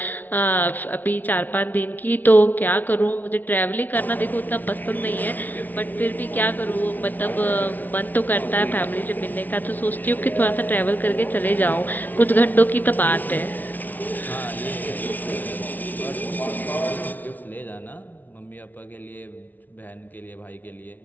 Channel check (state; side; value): late; right; 0.082 ms